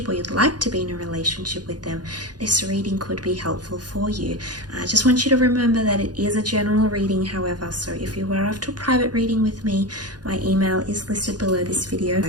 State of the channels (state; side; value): late; left; 0.69 ms